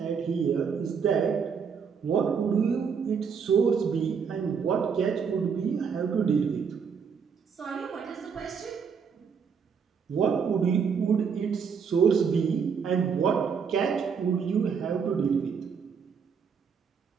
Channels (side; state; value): left; quieter; 6.4 dB